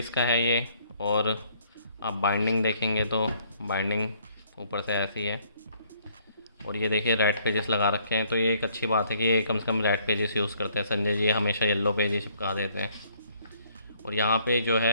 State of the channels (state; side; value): inverted; both; correlation -0.63